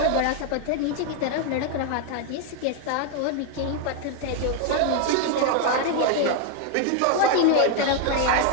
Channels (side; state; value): both; different; correlation 0.01